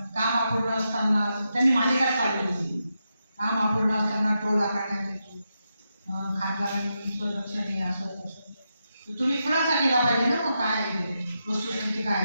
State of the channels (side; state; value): both; inverted; correlation -0.85